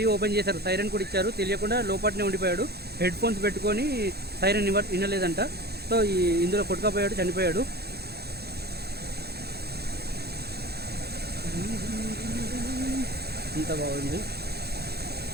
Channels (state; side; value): late; left; 0.47 ms